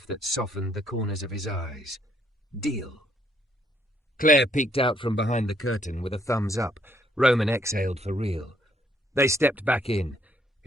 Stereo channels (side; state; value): both; normal; correlation 0.69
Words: that softened the corners of his eyes. Deal. Claire peeked out from behind the curtain with a thumbs up. Roman exhaled for real. They stepped back in.